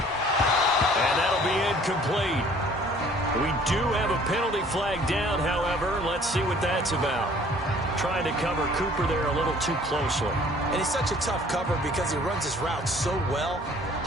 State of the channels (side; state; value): both; normal; correlation 0.54